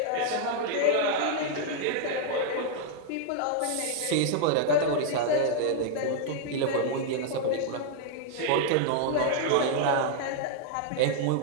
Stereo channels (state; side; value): different; both; correlation -0.01